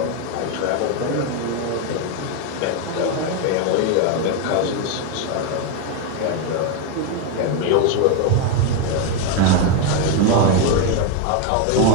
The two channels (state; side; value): different; both; correlation 0.02